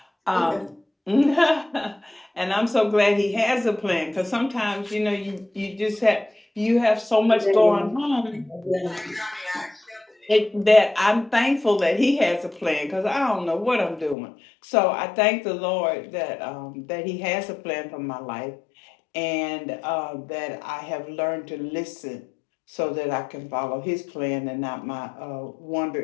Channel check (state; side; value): drops out; right; at 14.2 s